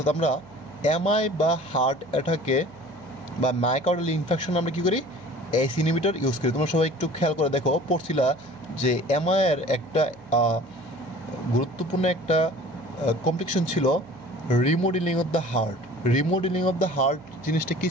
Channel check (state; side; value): noise; right; hum, 23 dB below the sound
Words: আমরা এমআই বা হার্ট অ্যাটাকে বা মায়োকার্ডিয়াল ইনফেকশন আমরা কী করি? এসি ইনহিবিটর ইউজ করি। তোমরা সবাই একটু খেয়াল করে দেখো, পড়ছিলা যে এমআইয়ের একটা গুরুত্বপূর্ণ একটা কমপ্লিকেশন ছিল remodelling of the heart. Remodelling of the heart জিনিসটা কী